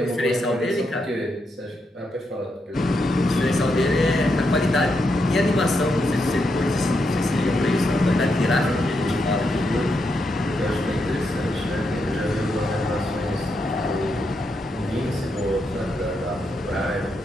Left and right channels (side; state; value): both; normal; correlation 0.82